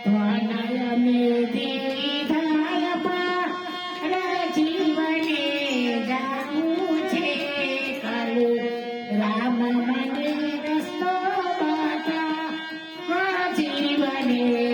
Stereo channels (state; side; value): identical; both; correlation 1.00